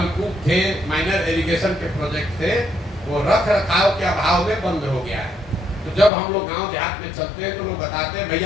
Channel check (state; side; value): drops out; right; at 6.1 s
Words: थे, माइनर इरिगेशन के प्रोजेक्ट थे, वो रख रखाव के अभाव में बंद हो गया है। तो जब हम लोग गांव देहात में चलते हैं तो लोग बताते हैं